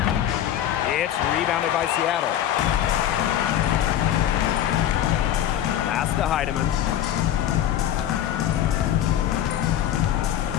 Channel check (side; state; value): right; quieter; 11.2 dB